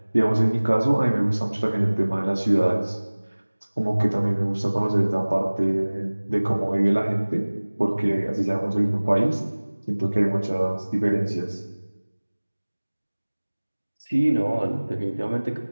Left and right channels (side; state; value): both; inverted; correlation -1.00